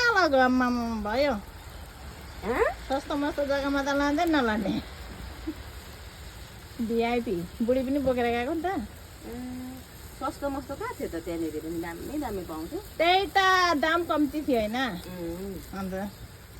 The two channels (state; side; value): identical; both; correlation 1.00